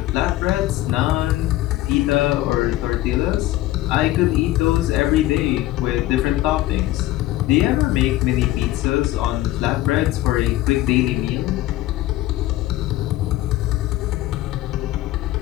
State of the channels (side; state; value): right; quieter; 15.7 dB